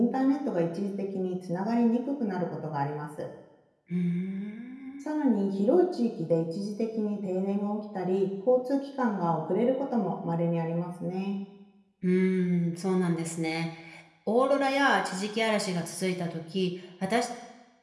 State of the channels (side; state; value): both; identical; correlation 1.00